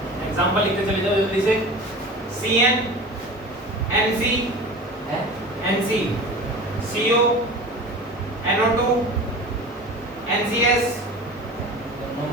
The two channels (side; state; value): both; normal; correlation 0.35